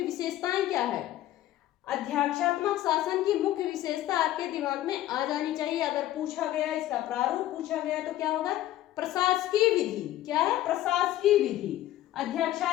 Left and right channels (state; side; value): quieter; right; 14.0 dB